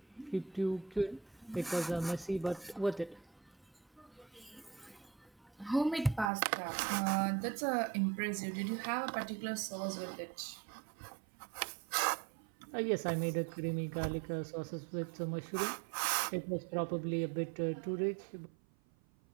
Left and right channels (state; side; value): drops out; left; at 6.3 s